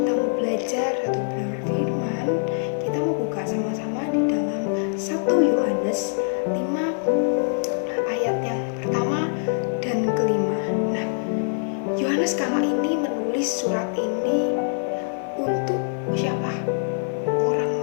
mau belajar satu kebenaran firman. Kita mau buka sama-sama di dalam 1 Yohanes 5 ayat yang pertama dan kelima. Nah,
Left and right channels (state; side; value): silent; right; digital silence